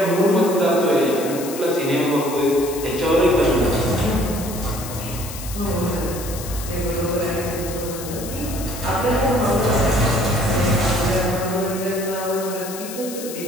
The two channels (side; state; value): left; noise; hiss, 11 dB below the sound